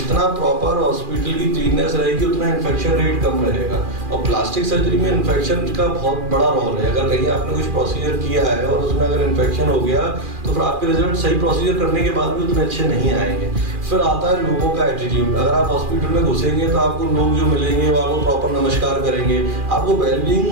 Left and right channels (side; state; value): left; late; 2.4 ms